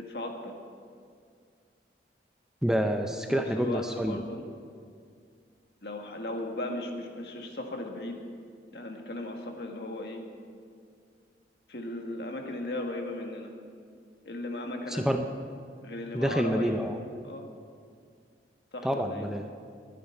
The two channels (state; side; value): normal; both; correlation 0.71